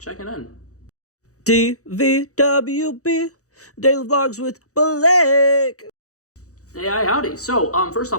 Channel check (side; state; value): right; late; 0.65 ms